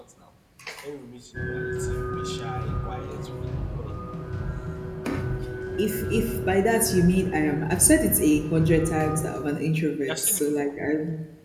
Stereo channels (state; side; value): identical; both; correlation 1.00